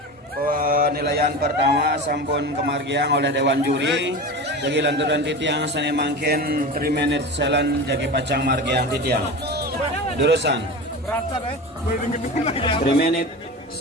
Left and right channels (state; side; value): normal; both; correlation 0.29